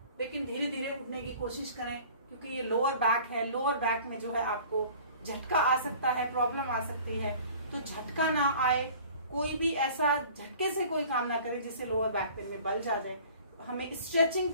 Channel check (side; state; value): both; inverted; correlation -0.47